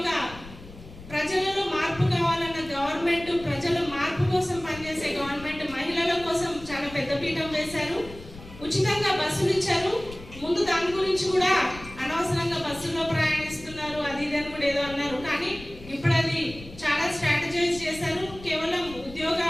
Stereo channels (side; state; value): left; noise; rumble, 16 dB below the sound